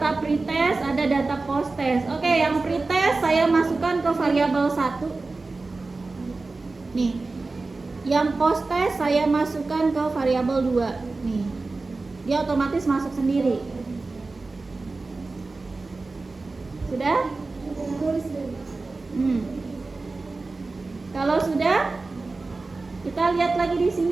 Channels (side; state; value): left; quieter; 3.6 dB